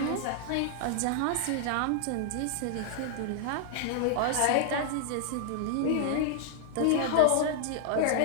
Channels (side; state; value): both; different; correlation -0.01